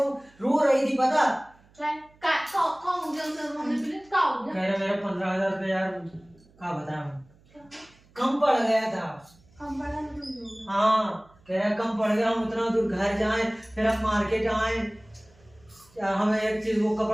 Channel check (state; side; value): noise; right; hum, 30 dB below the sound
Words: रो रही थी पता? क्या कौन हो गया उसे हमने पहले क्या हो गया? कह रहे मेरा 15,000 रुपये यार, क्या बताऊं, कम पड़ गया था। हम बड़ा नहीं। हाँ कह रहा कम पड़ गया, हम उतना दूर घर जाएं, फिर हम मार्केट आए, हमें एक चीज वो